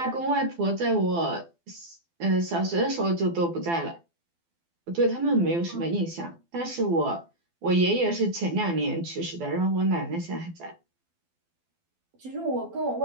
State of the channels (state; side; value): late; left; 12 ms